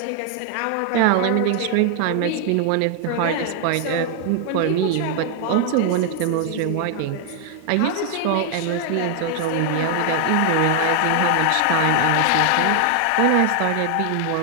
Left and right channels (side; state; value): both; different; correlation 0.00